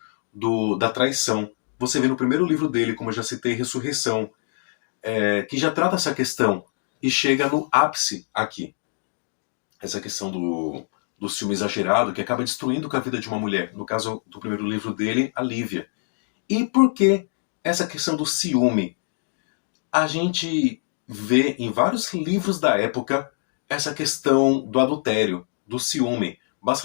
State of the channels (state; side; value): silent; right; digital silence